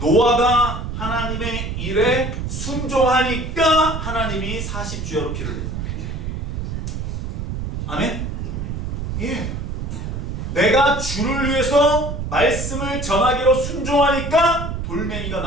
하나님의 일에 순종하니까 하나님이 40주야로 피를 내요. 아멘? 예. 내가 주를 위해서 말씀을 전하기로 순종하니까 돌멩이가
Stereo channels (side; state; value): right; noise; rumble, 4 dB below the sound